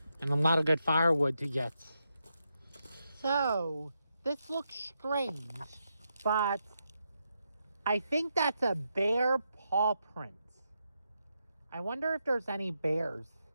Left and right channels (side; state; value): both; inverted; correlation -0.84